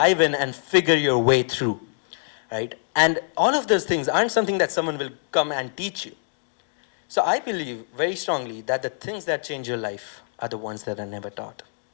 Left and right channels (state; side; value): silent; right; digital silence